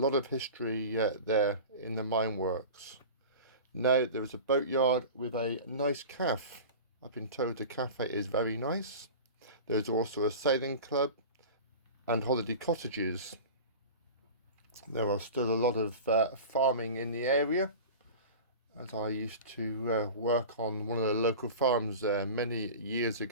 of history there in the mine works. Now there is a boatyard with a nice cafe. I've been told the cafe is very nice. There's also a sailing club and holiday cottages. There are still a lot of farming in the area, as I used to work on one of the local farms there many years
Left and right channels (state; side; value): inverted; both; correlation -0.34